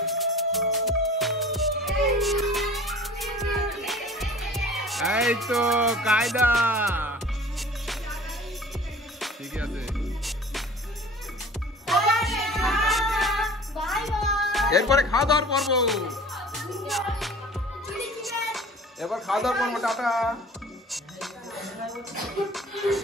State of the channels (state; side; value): normal; both; correlation 0.44